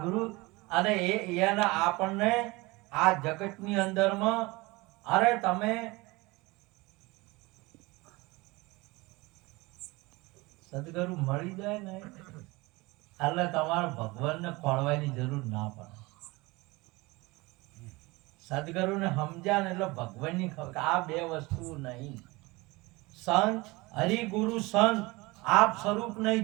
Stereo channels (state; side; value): quieter; left; 23.1 dB